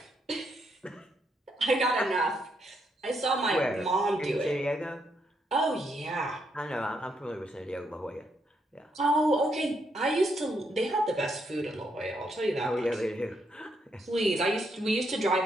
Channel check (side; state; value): both; normal; correlation 0.77